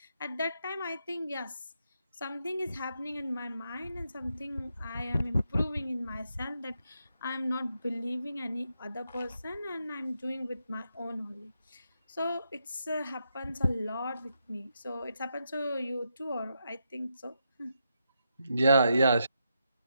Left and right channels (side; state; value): both; inverted; correlation -0.82